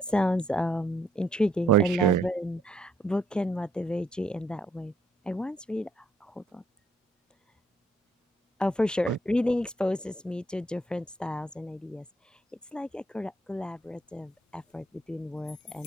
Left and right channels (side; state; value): both; normal; correlation 0.69